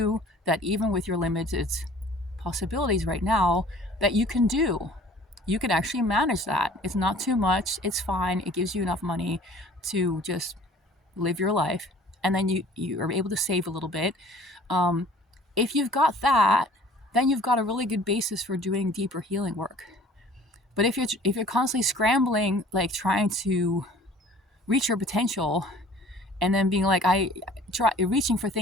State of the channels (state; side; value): normal; both; correlation 0.50